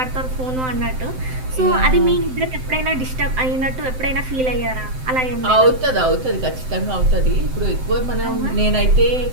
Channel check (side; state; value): left; late; 7.8 ms